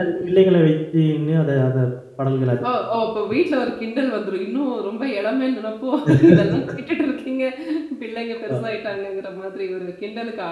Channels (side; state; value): both; identical; correlation 1.00